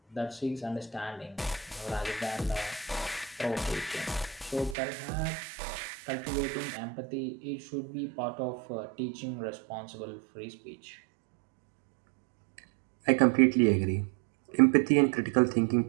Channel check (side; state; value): left; drops out; at 4.8 s